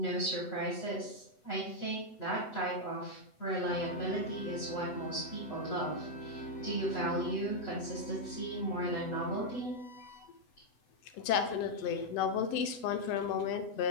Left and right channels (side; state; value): right; late; 8.0 ms